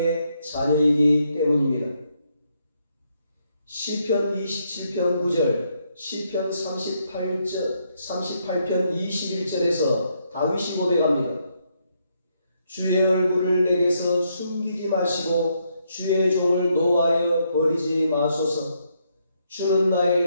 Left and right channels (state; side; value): inverted; both; correlation -0.76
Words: 자녀이기 때문입니다. 시편 27편 9절, 시편 38편 21절에서 다윗이 고백합니다. 주의 얼굴을 내게서 숨기지 마시고 주의 종을 노하여 버리지 마소서. 주는